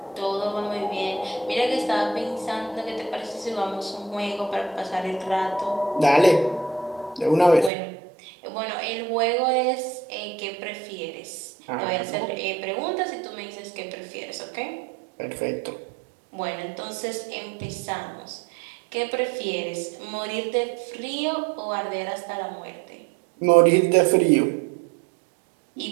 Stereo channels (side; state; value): left; drops out; at 7.7 s